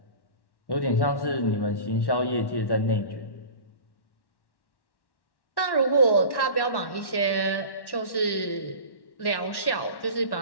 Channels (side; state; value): right; late; 1.1 ms